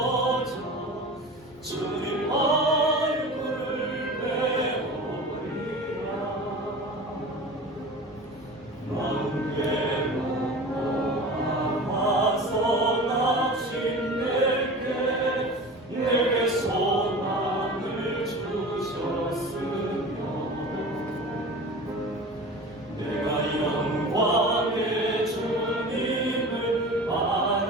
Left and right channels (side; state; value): both; normal; correlation 0.35